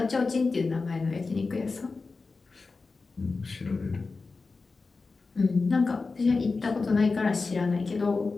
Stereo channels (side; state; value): right; quieter; 4.1 dB